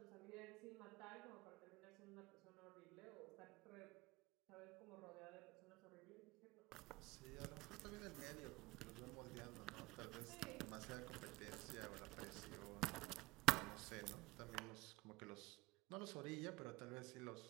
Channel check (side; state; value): left; quieter; 21.2 dB